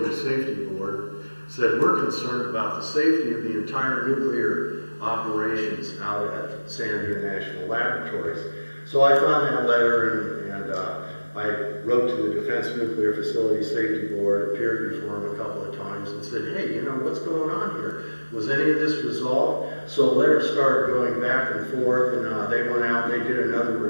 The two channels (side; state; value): both; inverted; correlation -1.00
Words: Safety Board said, we're concerned about the safety of the entire nuclear operations out at Sandia National Laboratories. So I found that letter and I wrote to the Defense Nuclear Facility Safety Board, appeared before them a couple of times and said, hey, you know, what's going on here? Was any of this resolved? So letters started going back and forth, and they went out and they did another